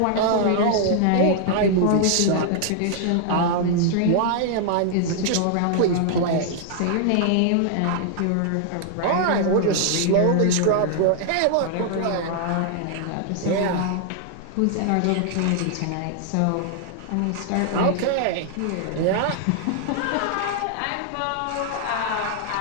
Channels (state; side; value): different; both; correlation -0.01